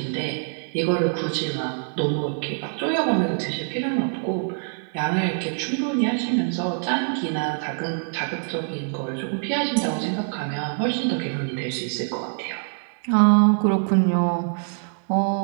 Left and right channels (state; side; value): silent; left; 62 dB below the other